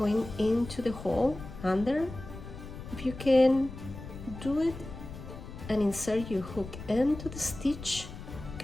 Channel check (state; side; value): noise; left; rumble, 12 dB below the sound